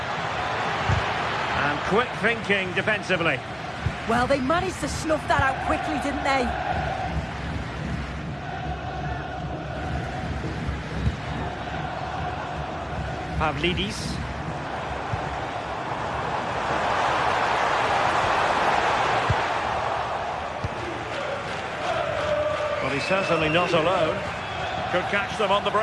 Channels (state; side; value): identical; both; correlation 1.00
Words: And quick thinking defensively. Well, they managed to snuff that out quickly, didn't they? Pavlidis. Well, he's certainly not alone. Could catch them on the